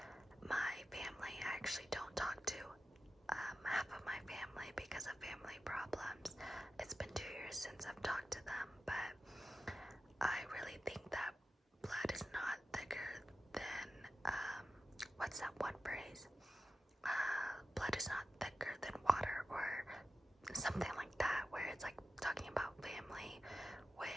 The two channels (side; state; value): both; normal; correlation 0.93